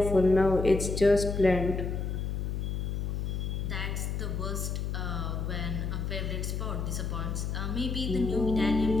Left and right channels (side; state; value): left; noise; hum, 2 dB below the sound